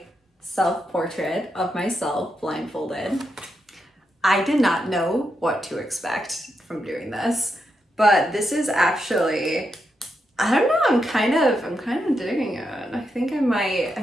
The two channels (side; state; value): both; normal; correlation 0.84